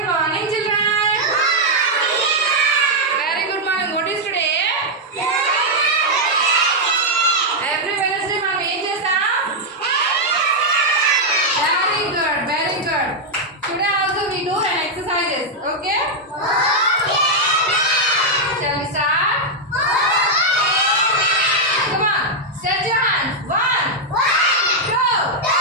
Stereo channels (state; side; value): normal; both; correlation -0.02